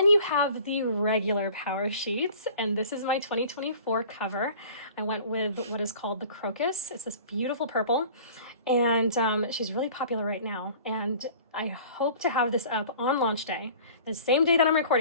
you have the regular Powersheets, and this is my 2024 cover. I went with what is called the Crocus. It's this beautiful purple, and she's really popular right now. And I hope to have this up on launch day, the same day that I'm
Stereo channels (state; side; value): inverted; both; correlation -0.46